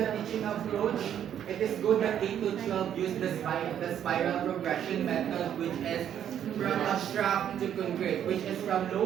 teaching approach, it is good that K to 12 use the spiral progression method, which is from abstract to concrete, which is from low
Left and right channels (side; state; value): left; quieter; 9.8 dB